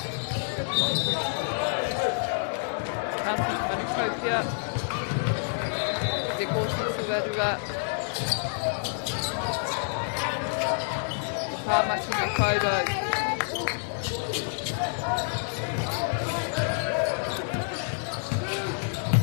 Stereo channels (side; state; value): right; silent; digital silence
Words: County Manukopia te kōti tuarua Tāmaki na Kaurau.